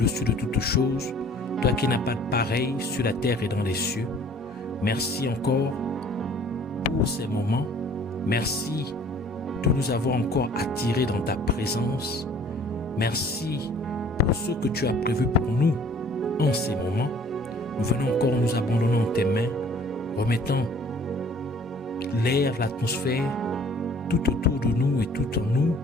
de toutes choses, toi qui n'as pas de pareil sur la terre et dans les cieux. Merci encore pour ces moments. Merci de nous avoir encore attirés dans ta présence. Merci pour ce que tu as prévu pour nous en ces moments. Nous venons encore nous abandonner en tes mains, remettant l'air, l'atmosphère, tout autour de nous et tout en nous,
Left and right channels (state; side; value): normal; both; correlation 0.53